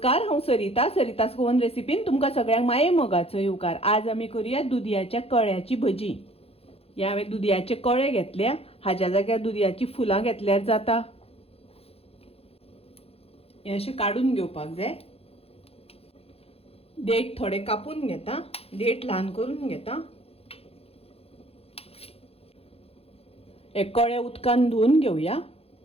हांव सरितास गोवन रेसिपीन तुमकां सगळ्यांक माये मोगाचो येवकार। आज आमी करूया दुदयाच्या कळ्याची भजी। ह्या हांवें दुदयाचे कळे घेतल्या, हाच्या जाग्यार दुदयाची फुलां घेतल्यार जाता। हे अशें काडून घेवपाक जाय। देठ थोडे कापून घेता, देठ ल्हान करून घेता। हे कळे उदकान धुवन घेवया।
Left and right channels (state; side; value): late; right; 0.29 ms